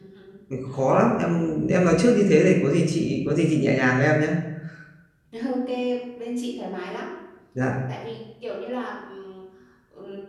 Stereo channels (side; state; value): both; identical; correlation 1.00